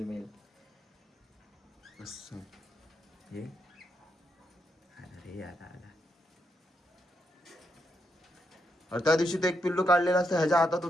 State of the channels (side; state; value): both; normal; correlation 0.81